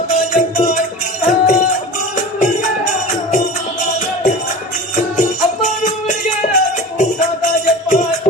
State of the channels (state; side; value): normal; both; correlation 0.34